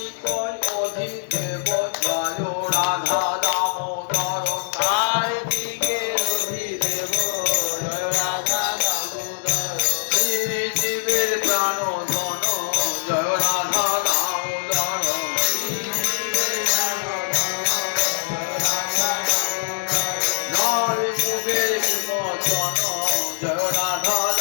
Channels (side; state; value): right; silent; 64 dB below the other